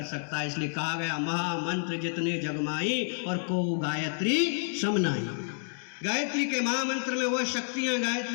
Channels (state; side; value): silent; right; digital silence